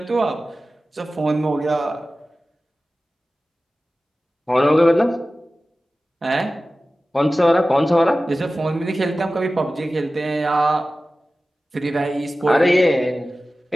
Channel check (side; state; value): both; normal; correlation 0.96